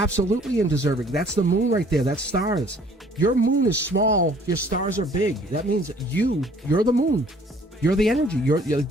undeserving. That's the moon right there. That's stars. Your moon is small. Your stars are big. That means you're the moon. You're the energy.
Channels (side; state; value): both; normal; correlation 0.57